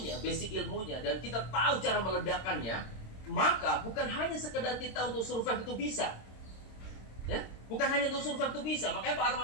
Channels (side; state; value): right; late; 26 ms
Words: basic ilmunya, dan kita tahu cara meledakkannya, maka bukan hanya sekedar kita untuk survive itu bisa, ya, bukan hanya untuk survive itu bisa. Makanya Pak